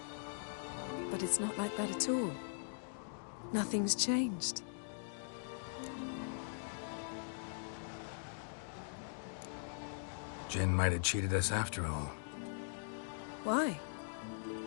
But it's not like that at all. Nothing's changed. Jin might have cheated us after all. Why?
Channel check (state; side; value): silent; right; digital silence